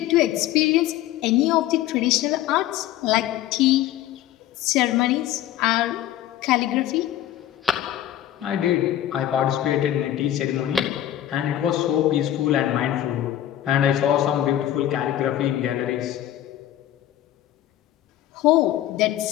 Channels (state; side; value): quieter; right; 12.5 dB